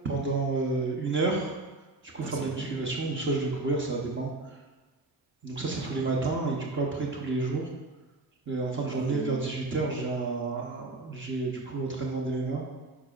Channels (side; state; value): left; quieter; 3.0 dB